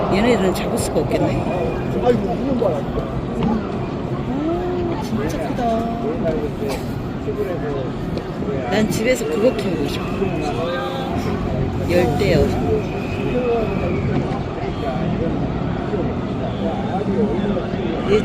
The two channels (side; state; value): both; identical; correlation 1.00